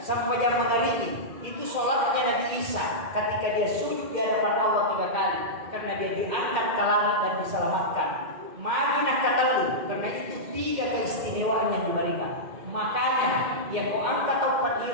sampai jam mengalami itu sholatnya Nabi Isa ketika dia sujud di hadapan Allah 3 kali karena dia diangkat ke langit dan diselamatkan. Madinah katalu karena itu 3 keistimewaan yang diberikan. Makanya yang kau angkat tau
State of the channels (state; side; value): late; left; 2.1 ms